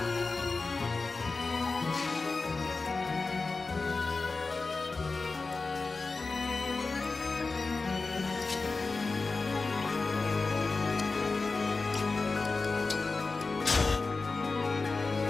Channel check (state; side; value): quieter; right; 3.9 dB